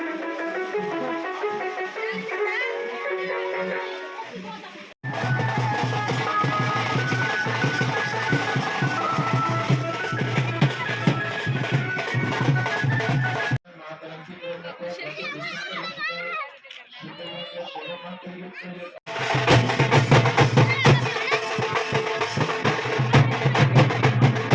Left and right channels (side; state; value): both; identical; correlation 1.00